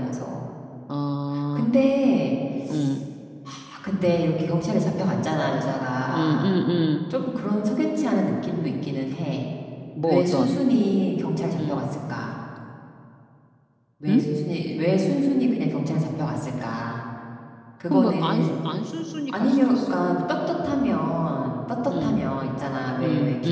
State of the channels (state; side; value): identical; both; correlation 1.00